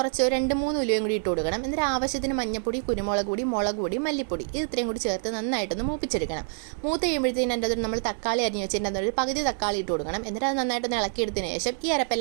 2-3 ഉലുവയും കൂടി ഇട്ട് കൊടുക്കണം. എന്നിട്ട് ആവശ്യത്തിന് മഞ്ഞപ്പൊടി, കുരുമുളക് പൊടി, മുളക് പൊടി, മല്ലിപ്പൊടി ഇത് ഇത്രയും കൂടി ചേർത്ത് നന്നായിട്ടൊന്ന് മൂപ്പിച്ചെടുക്കണം. മൂത്ത് കഴിയുമ്പോഴത്തേനും അതിൻ്റെ അകത്തോട്ട് നമ്മൾ തക്കാളി അരിഞ്ഞ് വെച്ചതിൻ്റെ അകത്തോട്ട് പകുതി തക്കാളി ഇട്ട് കൊടുക്കണം. എന്നിട്ട് അത് നന്നായിട്ടൊന്ന് ഇളക്കിയെടുത്തതിന് ശേഷം ഈ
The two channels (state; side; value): silent; left; digital silence